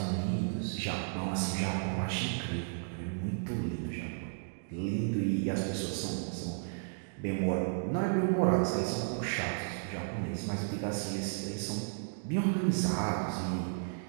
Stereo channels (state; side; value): silent; left; digital silence